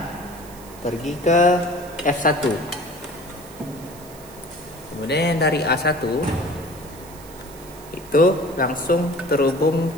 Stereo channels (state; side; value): noise; right; hiss, 20 dB below the sound